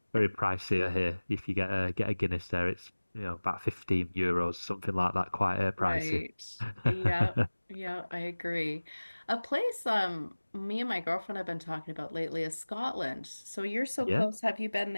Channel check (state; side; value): inverted; both; correlation -1.00